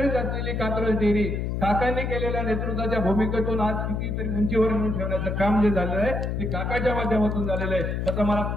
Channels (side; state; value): left; noise; hum, 1 dB below the sound